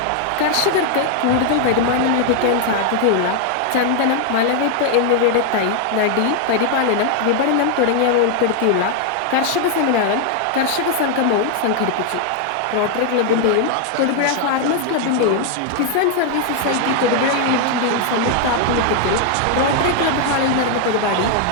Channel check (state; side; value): different; both; correlation 0.00